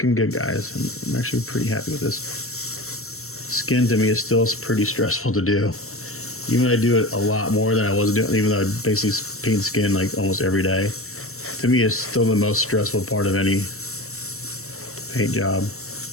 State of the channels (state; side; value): late; right; 0.63 ms